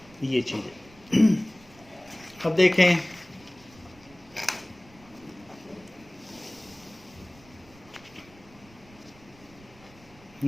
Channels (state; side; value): noise; right; rumble, 25 dB below the sound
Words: ये चीज है। अब देखें,